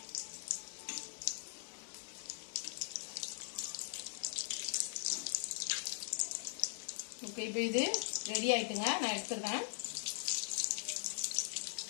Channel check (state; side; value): silent; right; 51 dB below the other